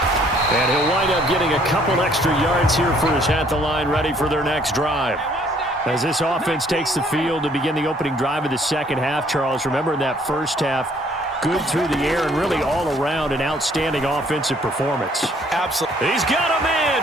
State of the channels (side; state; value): both; normal; correlation 0.62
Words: And he'll wind up getting a couple extra yards here for his at the line, ready for their next drive. As this offense takes the field to begin the opening drive of the second half, Charles, remember in that first half, good through the air and really all around an outstanding offensive performance. Absolutely. He's got a